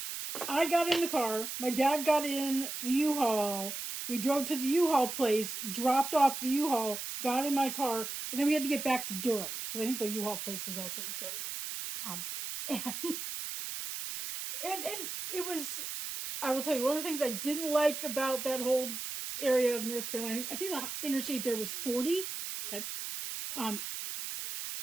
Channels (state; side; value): noise; right; hiss, 6 dB below the sound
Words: I got in the car, my dad got in the U-Haul, we drove to the U-Haul place, dropped off the U-Haul, got in my car, and then we had to get back to Durham, because I think the U-Haul place was also in Cary. And it was, I will tell you, one of the things I didn't like about that whole area of North Carolina, I think the interstate there was 40, okay,